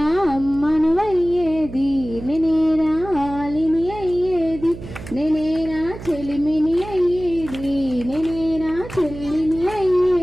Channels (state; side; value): noise; right; hum, 13 dB below the sound